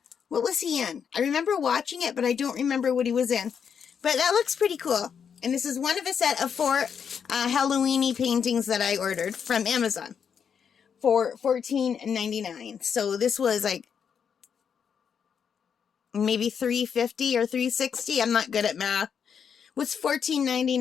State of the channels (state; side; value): quieter; right; 7.2 dB